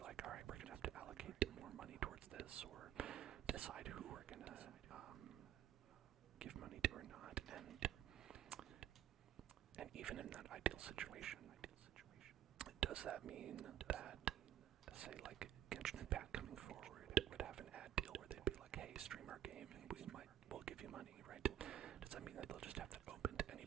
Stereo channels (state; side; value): quieter; left; 11.3 dB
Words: all right, we're going to have to allocate more money towards this, or decide who we're going to give money to or not. And even in that ideal situation, does that mean that, say, like Genshin Impact coming forward would have an ad deal where they'd be like, hey, stream our game and we'll give you money, right? Does that mean that they'll just have that open to